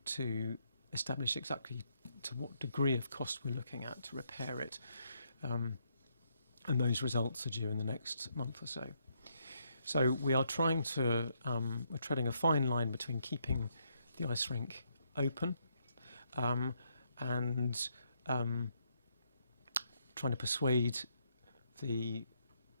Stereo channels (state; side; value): inverted; both; correlation -0.76